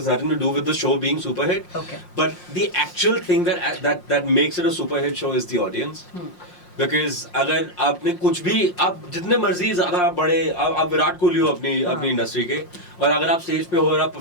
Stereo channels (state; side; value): late; right; 5.6 ms